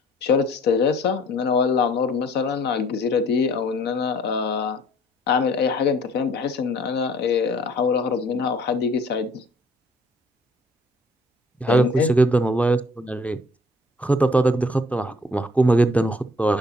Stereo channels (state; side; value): normal; both; correlation 0.57